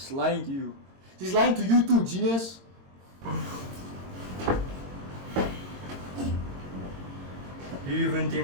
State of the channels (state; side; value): late; left; 22 ms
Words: lying to you. She's lying to you too, genius. Do you even think